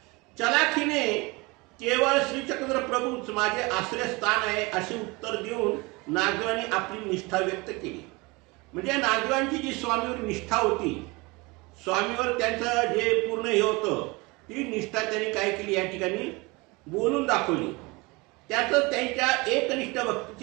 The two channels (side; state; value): left; quieter; 25.2 dB